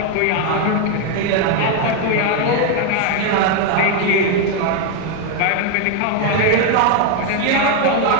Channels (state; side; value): different; both; correlation 0.01